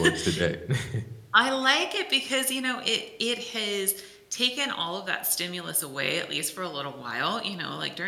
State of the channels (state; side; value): identical; both; correlation 1.00